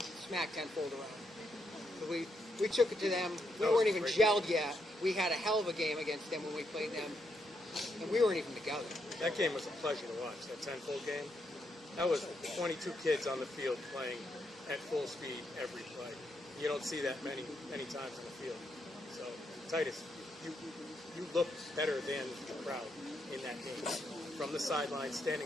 smacked tenfold around. So we took it to them. We weren't even gelled yet. We had a hell of a game against them when we played them, and we weren't even together. that game was a pleasure to watch. That 10-fold game. That was 22 kids on the field playing at full speed every play. You don't see that many times on the field. So Titus, you looked better than the crowd in that game. From the sideline,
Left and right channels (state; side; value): normal; both; correlation 0.79